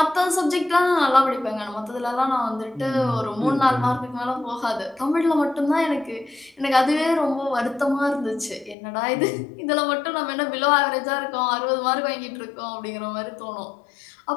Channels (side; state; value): right; drops out; at 8.8 s